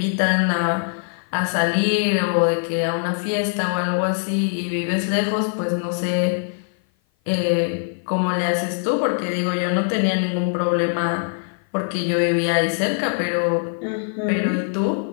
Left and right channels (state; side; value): silent; right; 55 dB below the other